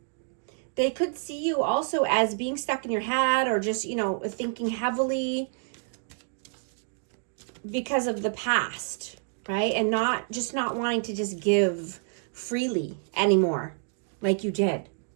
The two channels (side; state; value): left; silent; digital silence